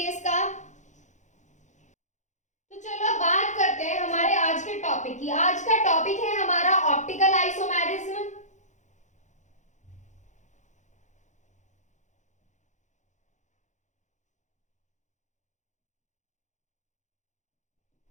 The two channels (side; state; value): right; late; 0.35 ms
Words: इसका। तो चलो अब बात करते हैं हमारे आज के टॉपिक की। आज का टॉपिक है हमारा ऑप्टिकल आइसोमेरिज्म।